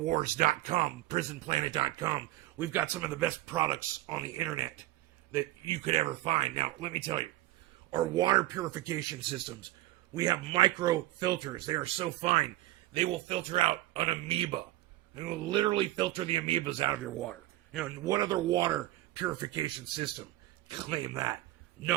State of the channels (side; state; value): left; quieter; 16.3 dB